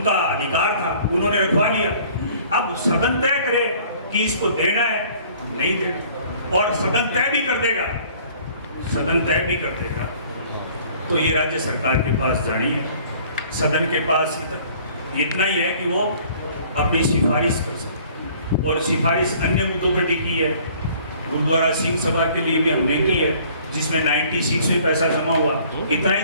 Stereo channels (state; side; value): inverted; both; correlation -0.54